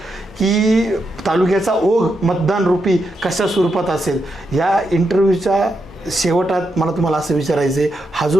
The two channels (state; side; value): normal; both; correlation 0.83